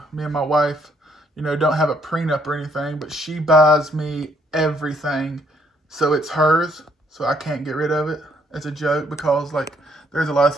me and my wife, you know, don't have a prenup or anything, but she buys me everything, so it's hers. So I can't get rid of it. It's a joke because, like, there's a lot of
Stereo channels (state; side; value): normal; both; correlation 0.69